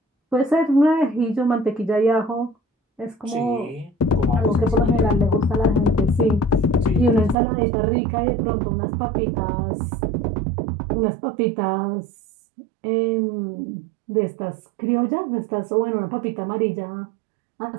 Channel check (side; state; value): left; drops out; at 7.4 s